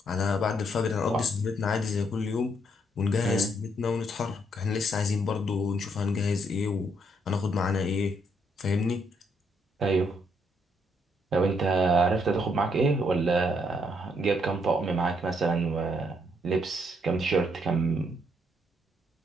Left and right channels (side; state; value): both; normal; correlation 0.73